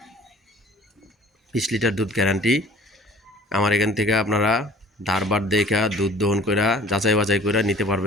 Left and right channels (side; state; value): both; normal; correlation 0.50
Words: 20 লিটার দুধ গ্যারান্টি। আমার এখান থেকে আপনারা ধারবার দেখা দুধ দহন করে যাচাই বাছাই করে নিতে